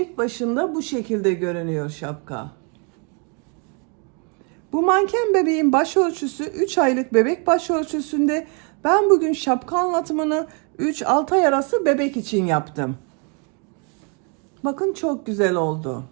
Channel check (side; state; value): left; quieter; 36.8 dB